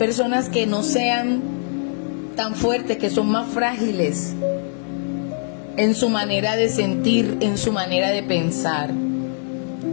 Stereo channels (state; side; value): silent; right; digital silence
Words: que no sean tan fuertes, que son más frágiles en su manera de sentir, en su manera de pensar.